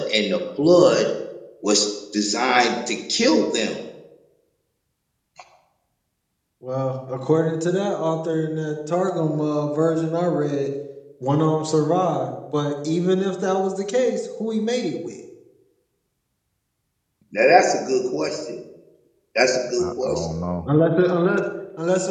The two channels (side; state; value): both; identical; correlation 1.00